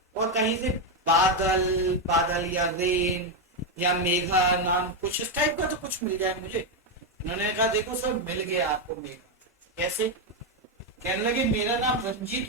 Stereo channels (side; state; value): both; normal; correlation 0.05